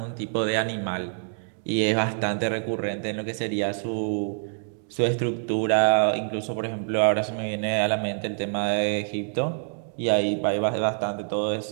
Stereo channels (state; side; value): silent; left; 57 dB below the other